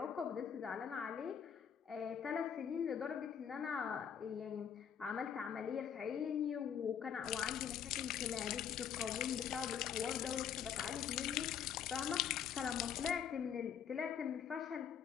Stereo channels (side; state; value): right; quieter; 8.1 dB